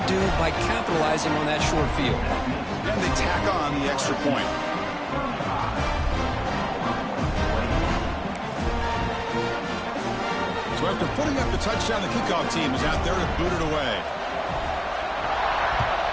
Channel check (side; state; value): both; identical; correlation 1.00